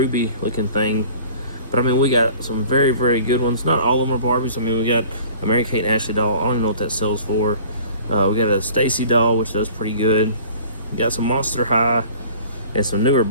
looking thing. But I mean, we got some very, very good ones. Not all of them are Barbies. I mean, we got a Mary Kate and Ashley doll. I don't even know what that sells for. We got a Stacy doll, which does pretty good. We got some Monster High and some newer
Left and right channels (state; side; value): inverted; both; correlation -0.47